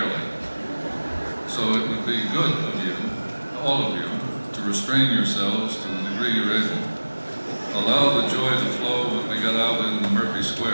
So it would be good of you, all of you, to restrain yourselves to the degree you're able. Allow the joy to flow when we get out in the Murphy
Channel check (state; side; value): inverted; both; correlation -1.00